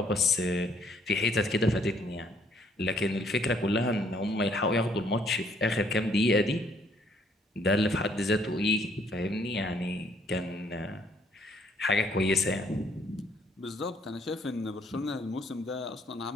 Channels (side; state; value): both; normal; correlation 0.66